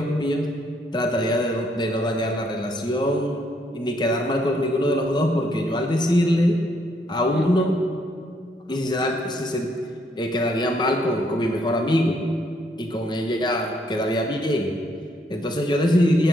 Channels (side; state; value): both; normal; correlation 0.71